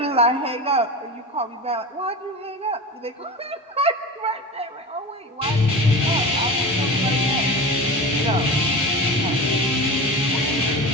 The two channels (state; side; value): normal; both; correlation 0.30